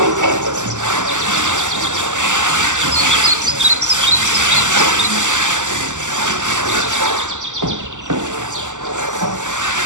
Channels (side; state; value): left; late; 0.86 ms